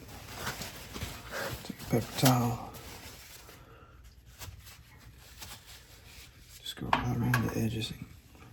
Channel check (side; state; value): both; identical; correlation 1.00